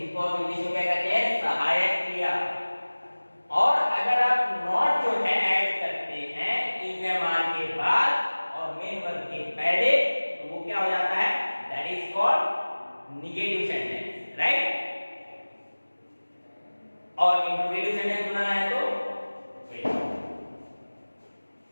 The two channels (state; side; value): inverted; both; correlation -1.00